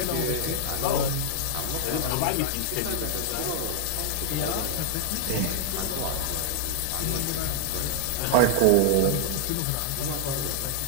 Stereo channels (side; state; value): both; different; correlation 0.00